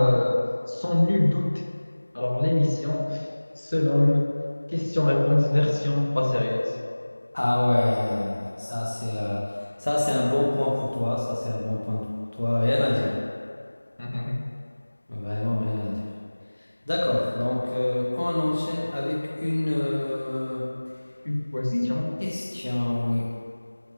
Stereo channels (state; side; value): inverted; both; correlation -1.00